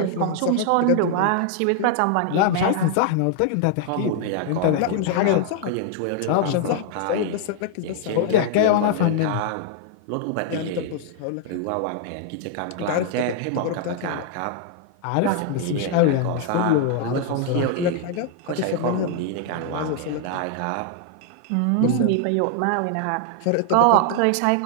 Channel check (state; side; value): different; both; correlation 0.00